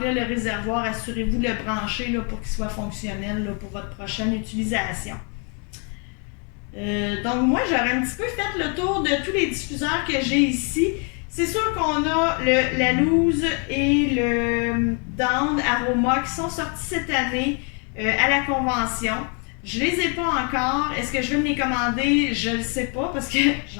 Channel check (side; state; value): right; quieter; 37.7 dB